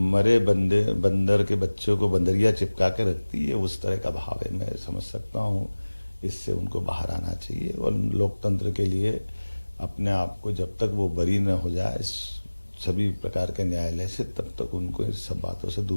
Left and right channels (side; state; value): both; inverted; correlation -1.00